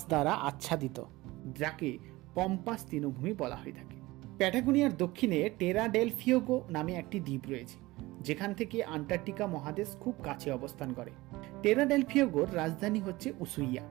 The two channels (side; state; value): left; quieter; 20.0 dB